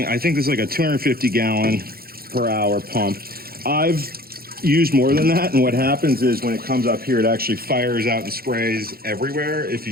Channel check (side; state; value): left; late; 0.44 ms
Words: I think this is like a 250 gallon per hour pump. I've used more than that, and what happens is when it comes up here, it actually fires out and sprays everywhere. If you